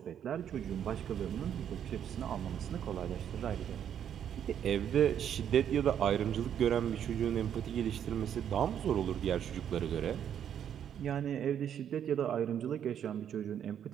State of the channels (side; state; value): left; quieter; 9.3 dB